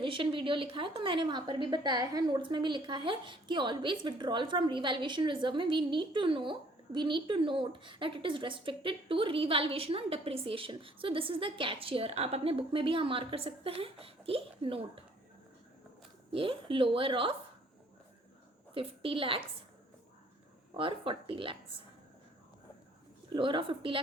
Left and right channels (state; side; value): normal; both; correlation 0.60